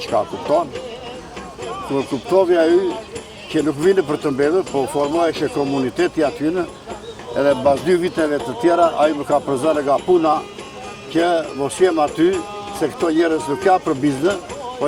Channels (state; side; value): identical; both; correlation 1.00